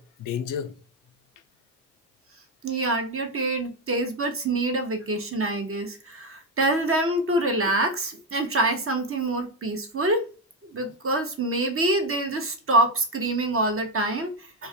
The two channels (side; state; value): both; normal; correlation 0.08